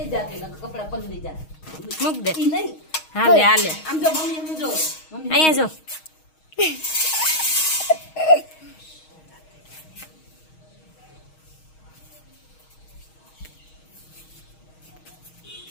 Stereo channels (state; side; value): late; right; 6.4 ms